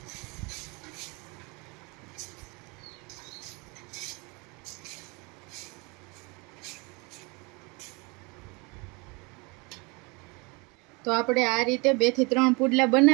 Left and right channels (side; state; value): left; quieter; 28.6 dB